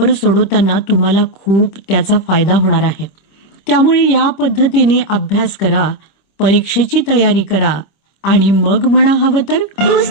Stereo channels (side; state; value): right; late; 26 ms